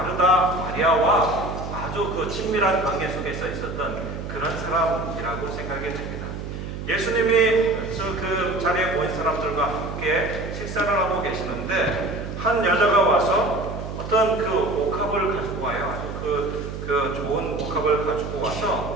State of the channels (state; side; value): noise; right; hum, 7 dB below the sound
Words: 마리아와 아주 친밀한 관계 속에서 있었던 그런 사람이라고 생각이 됩니다. 예수님이 그 자리에 모인 사람들과 함께 식사를 하고 계시는데 한 여자가 와서 어떤 옥합을 가지고 와요. 아주 좋은 옥합을 가지고